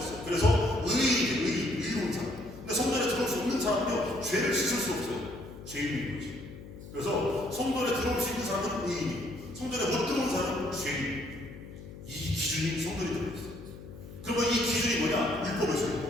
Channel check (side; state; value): left; noise; hum, 14 dB below the sound